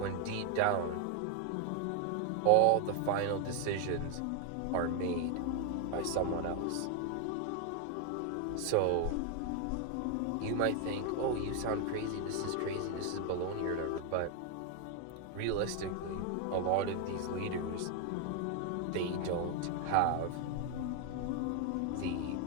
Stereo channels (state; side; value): different; both; correlation 0.00